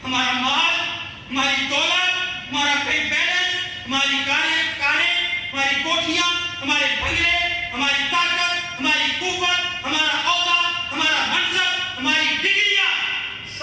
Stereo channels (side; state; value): both; identical; correlation 1.00